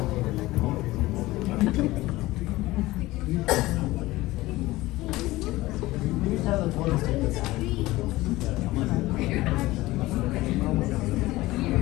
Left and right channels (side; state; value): right; quieter; 18.5 dB